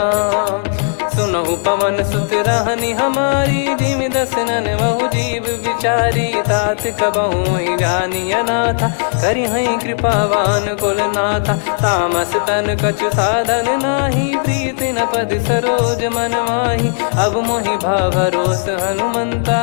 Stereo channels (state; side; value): silent; right; 69 dB below the other